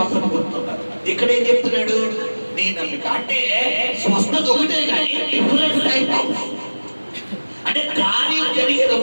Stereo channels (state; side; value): inverted; both; correlation -1.00